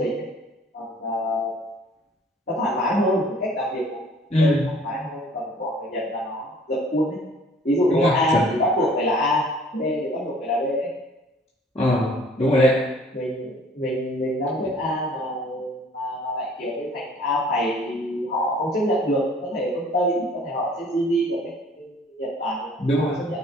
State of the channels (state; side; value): normal; both; correlation 0.54